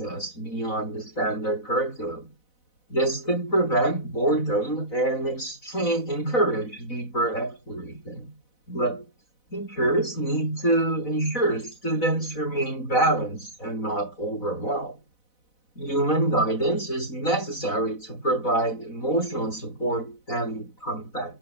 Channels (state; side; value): late; right; 4.0 ms